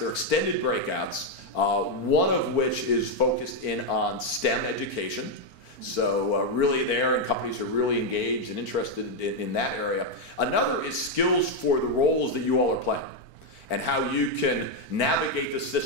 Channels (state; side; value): late; right; 4.4 ms